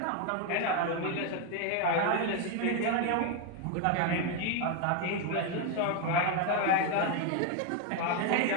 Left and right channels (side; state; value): both; different; correlation 0.01